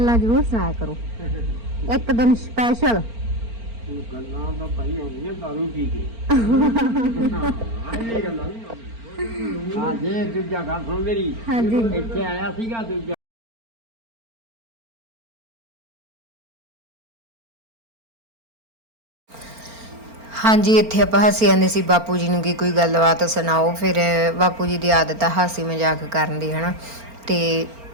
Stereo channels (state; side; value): late; left; 4.4 ms